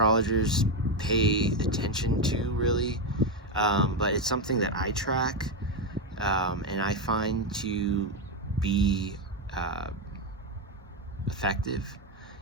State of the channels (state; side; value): normal; both; correlation 0.08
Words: pay attention to, really, but it's something that I track and I find to be uh, effective